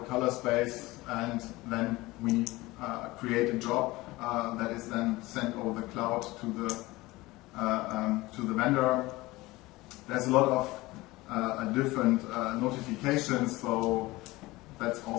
color space, and then we create a job that is then sent over the cloud to the vendor. There's a lot of different notifications, so that's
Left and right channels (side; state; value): right; quieter; 20.2 dB